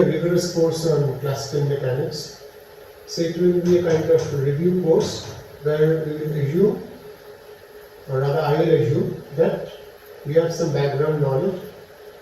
rigorous course on classical mechanics, so it will be a kind of review course where we will assume, or rather I will assume, that we have some background knowledge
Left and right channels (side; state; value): both; identical; correlation 1.00